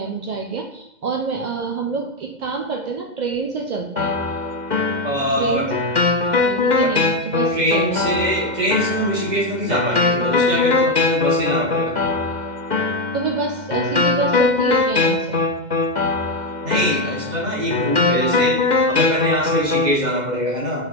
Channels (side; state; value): left; late; 2.1 ms